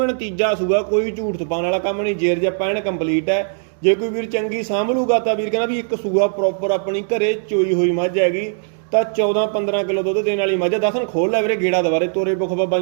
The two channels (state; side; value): silent; left; digital silence